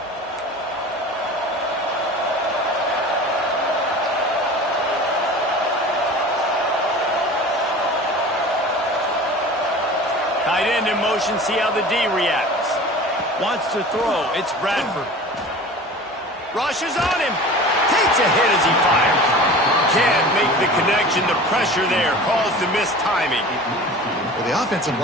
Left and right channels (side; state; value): both; normal; correlation 0.38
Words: Tight end in motion, see how the D reacts. Wants to throw, it's Bradford. Rushes on him, takes a hit as he fires. Can't make the connection, the pressure there caused the missed timing. Well, the offensive